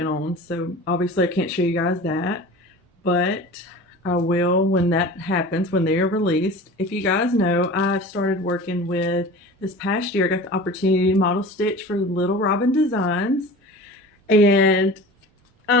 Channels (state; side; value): normal; both; correlation 0.37